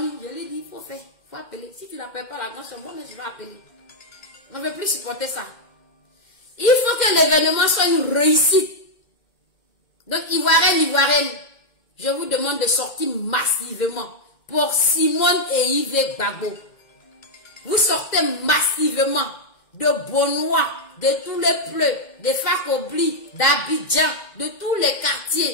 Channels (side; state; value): right; late; 2.0 ms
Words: je lui dis, il faut faire, il faut appeler. Si tu n'appelles pas la grande chambre, moi je vais appeler. On ne veut plus supporter ça. Il faut que l'événement soit une réussite. Donc, Ivoirienne, je vous demande de sortir massivement pour Simone et Yves Gbagbo. Vous sortez massivement de Bonois, de tous les pleux, de Fakobli, d'Abidjan, de tous les